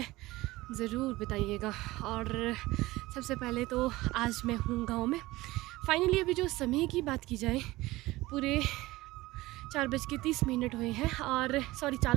ज़रूर बताइएगा। और सबसे पहले तो आज मैं हूँ गांव में। फाइनली अभी जो समय की बात की जाए, पूरे 4:30 हुए हैं और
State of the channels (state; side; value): quieter; left; 19.1 dB